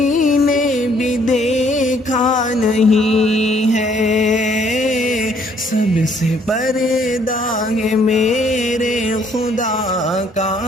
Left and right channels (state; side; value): normal; both; correlation 0.64